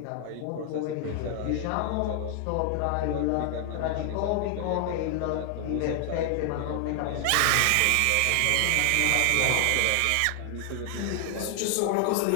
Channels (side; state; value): both; different; correlation 0.00